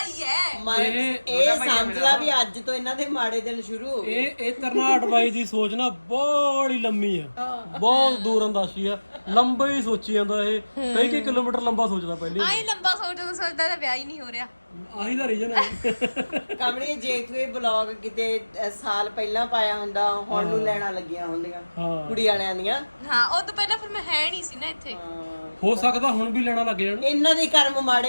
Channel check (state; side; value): inverted; both; correlation -1.00